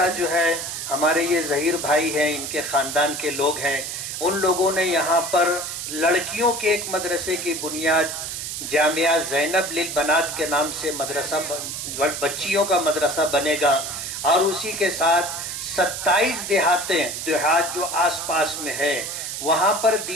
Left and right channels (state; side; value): noise; right; hiss, 5 dB below the sound